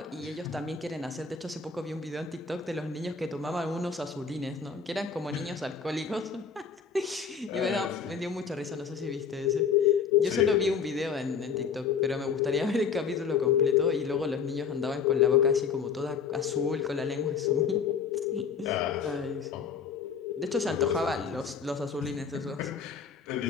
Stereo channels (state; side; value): quieter; right; 6.2 dB